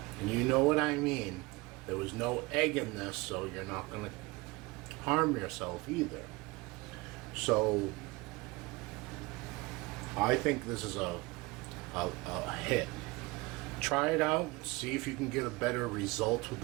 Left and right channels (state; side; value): quieter; left; 23.1 dB